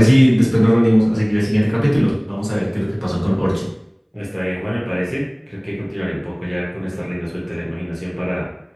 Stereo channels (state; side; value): identical; both; correlation 1.00